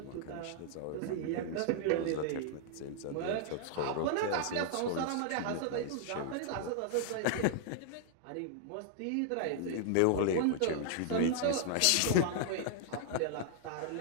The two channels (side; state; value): both; different; correlation -0.01